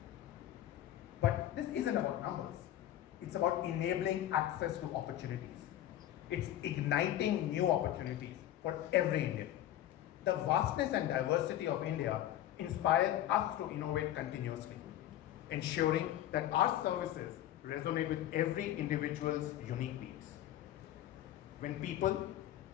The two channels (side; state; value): right; quieter; 12.6 dB